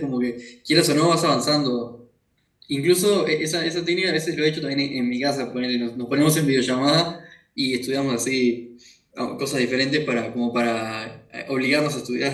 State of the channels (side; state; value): both; identical; correlation 1.00